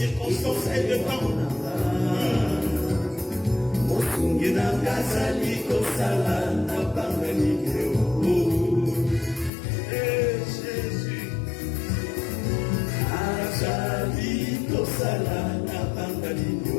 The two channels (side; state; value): right; drops out; at 9.5 s